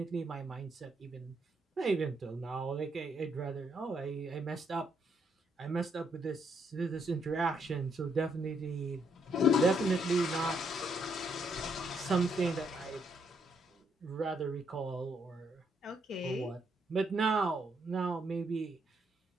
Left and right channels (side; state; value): both; normal; correlation 0.74